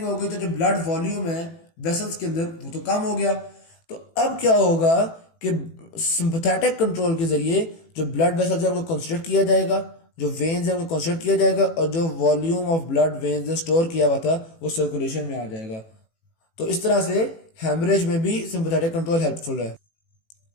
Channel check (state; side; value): late; right; 18 ms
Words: हो गई तो जो ब्लड वॉल्यूम है वेसल्स के अंदर वो तो कम हो गया। तो अब क्या होगा कि सिंपैथेटिक कंट्रोल के जरिए जो ब्लड वेसल्स है उनको कंस्ट्रिक्ट किया जाएगा, जो वेन्स है उनको कंस्ट्रिक्ट किया जाएगा और जो वॉल्यूम ऑफ ब्लड वेन्स ने स्टोर किया हुआ था वो सर्कुलेशन में आ जाएगा। तो इस तरह से हेमरेज में भी सिंपैथेटिक कंट्रोल हेल्पफुल है।